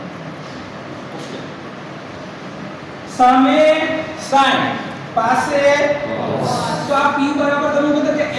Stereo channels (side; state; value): both; identical; correlation 1.00